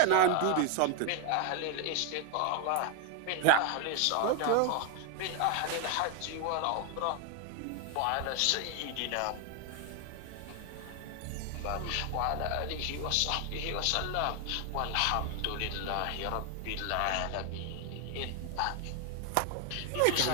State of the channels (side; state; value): both; different; correlation 0.01